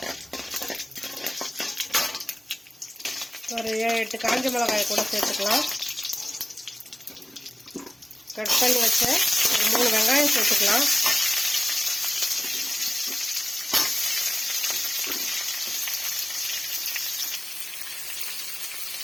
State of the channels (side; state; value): both; normal; correlation 0.97